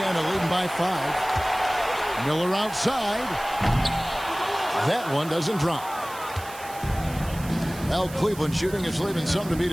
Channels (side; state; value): right; noise; hiss, 16 dB below the sound